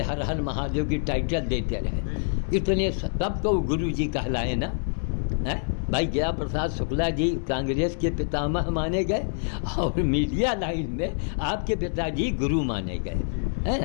हर हर महादेव की टाइटल देते रहे। इतने तब तो गुरु जी कहलाए ना, है भाई। गया प्रसाद शुक्ला जी कांग्रेस के पितामह माने गए, और मीडिया लाइन में आपके पिताजी गुरु माने गए, है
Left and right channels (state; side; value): silent; right; 58 dB below the other